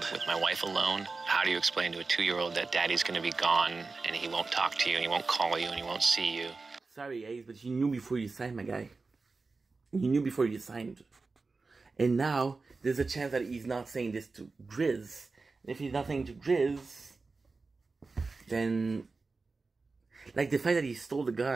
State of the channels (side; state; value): left; quieter; 4.0 dB